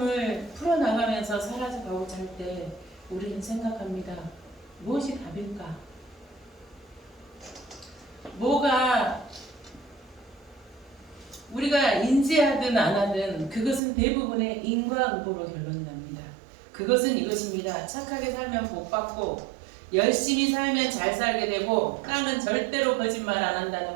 풀어나가면서 살아가고자 할 때 우리는 생각합니다. 무엇이 답일까? 뭐가 우리가 인지하든 안 하든 그것은 대부분의 인과응보로 결론이 납니다. 그것은 이것입니다. 착하게 살면 복 받고 열심히 살면 잘 살게 되고 땅은 절대로 거짓말 안 한다는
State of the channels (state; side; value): drops out; left; at 13.8 s